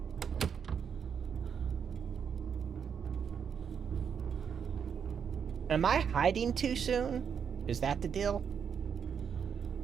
Am I hiding too soon? Is that the deal?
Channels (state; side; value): quieter; left; 7.2 dB